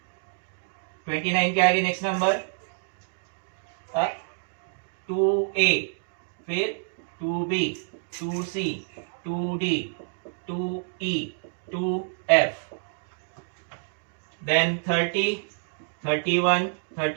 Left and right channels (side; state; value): left; silent; digital silence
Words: 29 के आगे नेक्स्ट नंबर 2A, फिर 2B 2C 2D 2E 2F, then 30 31